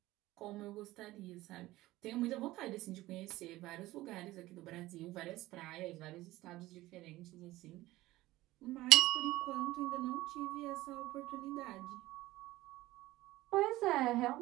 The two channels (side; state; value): left; quieter; 17.5 dB